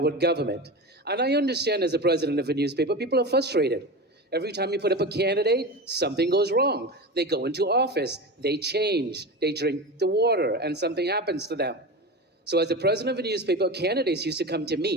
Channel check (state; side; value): normal; both; correlation 0.25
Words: government. And I understand as a president of a newspaper, people are frustrated. Every time you put up a candidate, something goes wrong. They go into office, they change, they drink the water, and something happens to them. So as the president of a newspaper, candidates used to come to